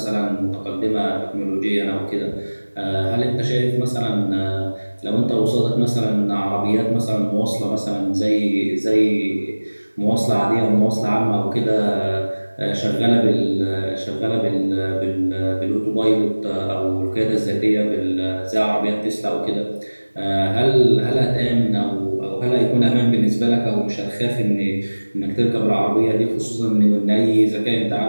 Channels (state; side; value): inverted; both; correlation -1.00